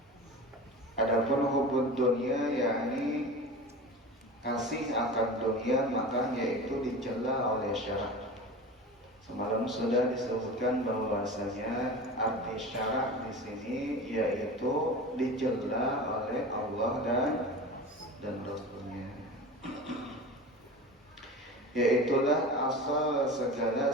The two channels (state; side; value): normal; both; correlation 0.32